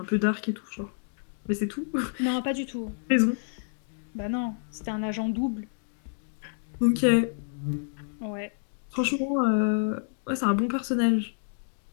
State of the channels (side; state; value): right; silent; digital silence